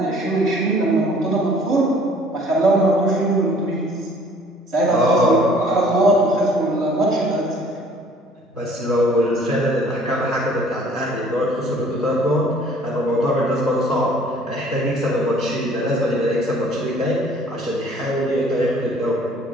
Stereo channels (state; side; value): normal; both; correlation 0.55